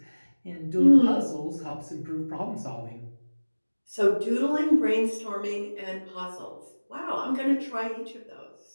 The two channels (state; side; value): inverted; both; correlation -1.00